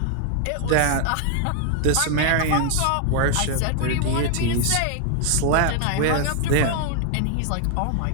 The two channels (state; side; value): different; both; correlation 0.00